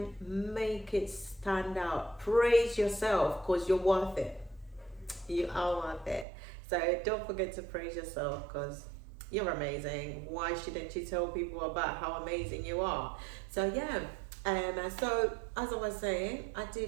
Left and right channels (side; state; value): left; drops out; at 6.2 s